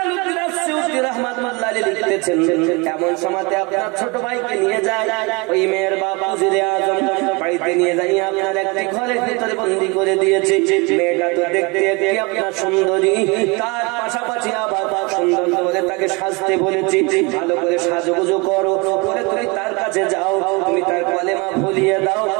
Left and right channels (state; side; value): quieter; left; 27.8 dB